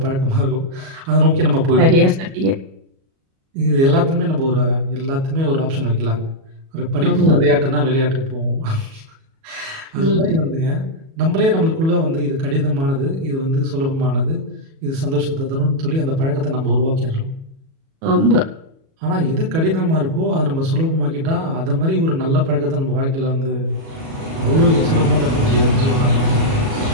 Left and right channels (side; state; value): left; late; 37 ms